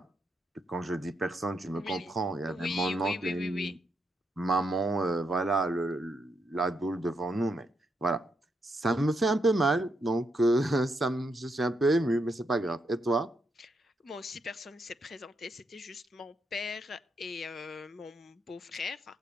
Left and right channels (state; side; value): normal; both; correlation 0.80